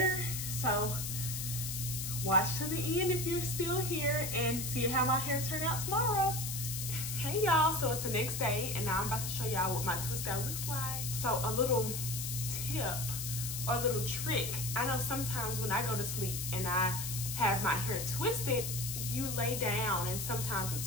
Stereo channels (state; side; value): noise; left; hiss, 4 dB below the sound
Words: So watch to the end if you're still here and see how my hair turned out tomorrow. Hey y'all, so it's the next day and now I'm about to show y'all what my twist out looks like. So a little tip or a little trick. I know sometimes when I go to sleep and I have my hair twisted, you lay down and sometimes